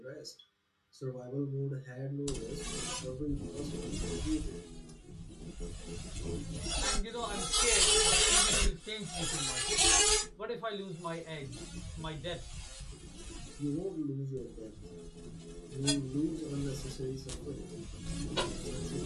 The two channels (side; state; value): both; identical; correlation 1.00